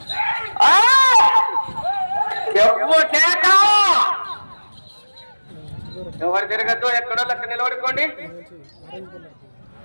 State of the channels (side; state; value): both; inverted; correlation -1.00